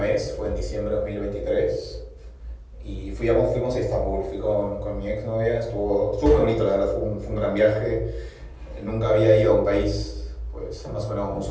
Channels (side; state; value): both; identical; correlation 1.00